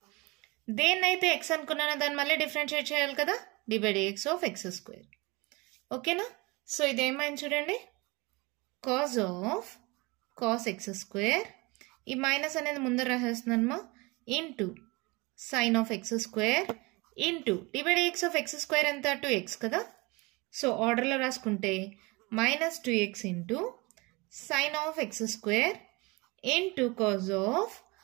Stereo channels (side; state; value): left; quieter; 25.5 dB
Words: దేన్నైతే ఎక్స్ అనుకున్నానో దాన్ని మళ్ళీ డిఫరెన్షియేట్ చేయాలి కదా, d y dx of x square. ఓకేనా, సో ఇదేమైంది చూడండి, cos of cos x square, ఈ మైనస్ అనేది ముందర రాసేస్తున్నానమ్మా, into sine of x square into d y dx of x square ఎంత 2x కదా. సో ఆర్డర్లో రాసుకుంటే minus 2x into sine of x square into cos of